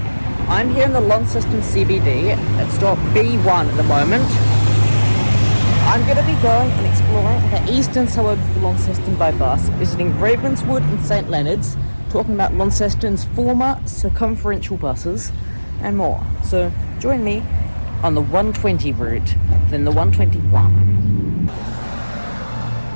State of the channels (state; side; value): inverted; both; correlation -1.00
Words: I'm here in the Launceston CBD at stop B1 at the moment. I'm going to be going and exploring the eastern suburbs of Launceston by bus, visiting Ravenswood and St Leonards, talking about Launceston's former circumferential buses and more. So join me on the 120 route, then the 121.